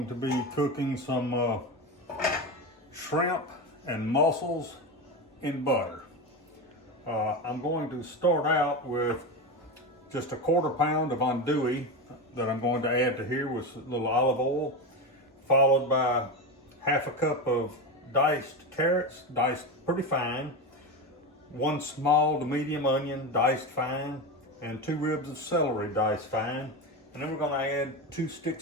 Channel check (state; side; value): normal; both; correlation 0.18